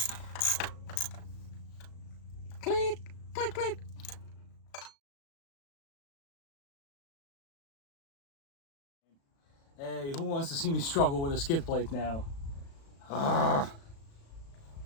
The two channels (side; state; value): right; late; 36 ms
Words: Click, click, click. Hey, who wants to see me struggle with a skid plate now?